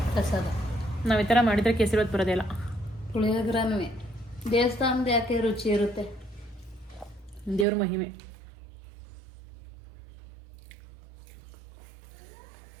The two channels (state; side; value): drops out; left; at 7.7 s